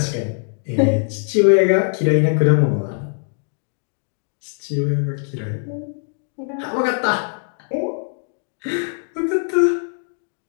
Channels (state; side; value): silent; right; 63 dB below the other